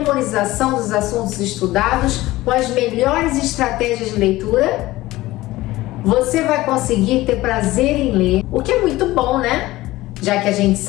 dos assuntos estudados com as melhores estratégias de leitura? Você vai conseguir ter prazer em ler, o que é muito bom, né? Já que a gente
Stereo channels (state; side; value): quieter; right; 17.8 dB